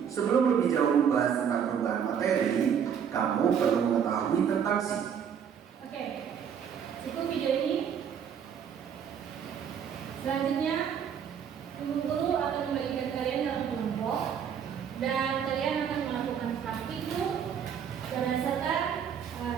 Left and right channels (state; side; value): quieter; left; 7.9 dB